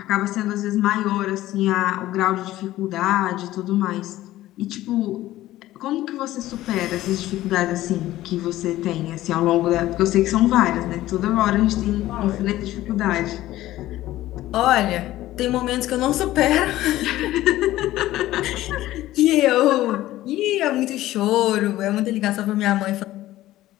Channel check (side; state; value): right; quieter; 15.3 dB